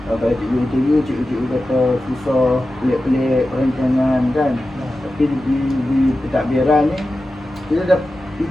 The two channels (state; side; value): normal; both; correlation 0.93